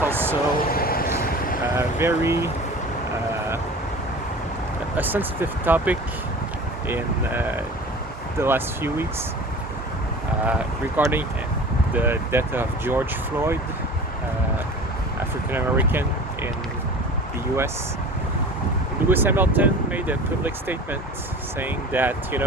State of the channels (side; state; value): both; normal; correlation 0.39